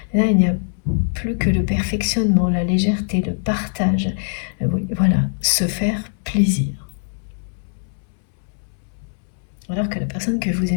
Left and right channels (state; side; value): silent; right; 65 dB below the other